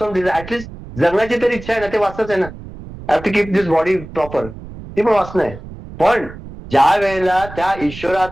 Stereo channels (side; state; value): right; noise; rumble, 14 dB below the sound